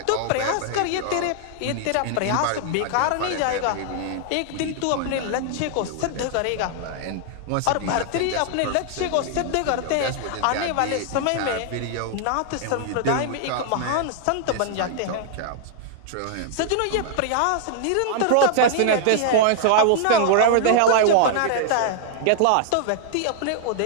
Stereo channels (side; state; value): both; different; correlation -0.01